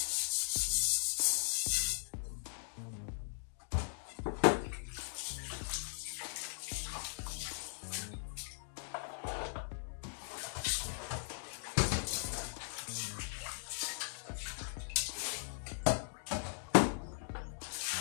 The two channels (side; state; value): right; silent; digital silence